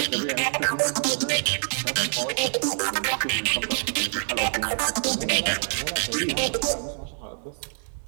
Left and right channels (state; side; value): silent; left; digital silence